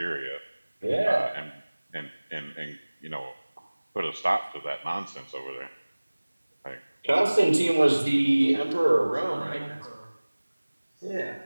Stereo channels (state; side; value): inverted; both; correlation -1.00